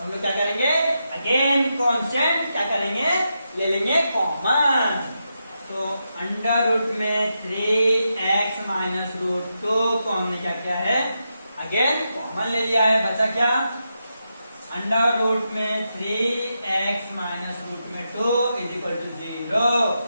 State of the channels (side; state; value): both; inverted; correlation -0.86